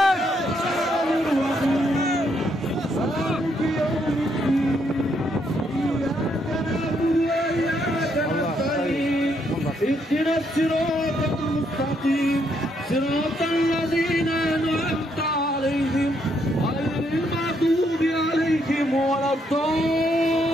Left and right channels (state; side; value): normal; both; correlation 0.74